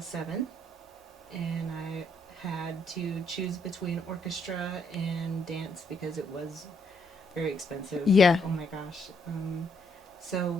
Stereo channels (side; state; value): both; normal; correlation 0.73